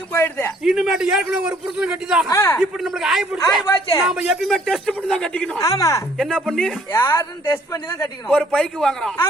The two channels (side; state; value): both; normal; correlation 0.61